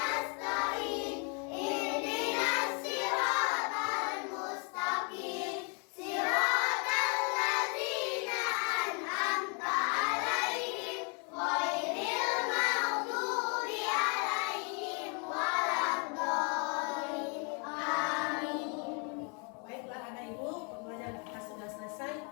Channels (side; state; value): right; quieter; 36.8 dB